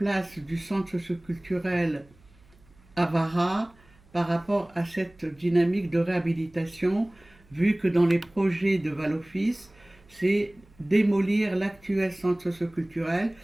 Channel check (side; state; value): right; noise; hum, 29 dB below the sound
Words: du centre socioculturel à Vara par rapport à cette dynamique de réhabilitation, vu que dans les projets de Val-Office, c'est démolir l'actuel centre socioculturel